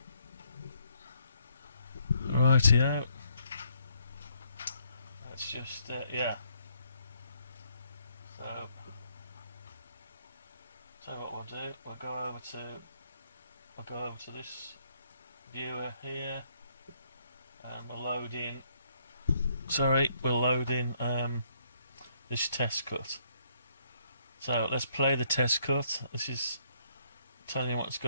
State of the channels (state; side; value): inverted; both; correlation -0.69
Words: Rightio. Let's just yeah. So what we'll do, we'll go over to this viewer here, and we'll load in. We'll load in this test cut. So let's play the test cut. This is telling you what it's